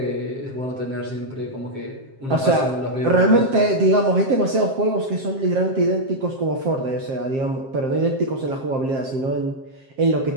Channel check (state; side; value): late; left; 7.5 ms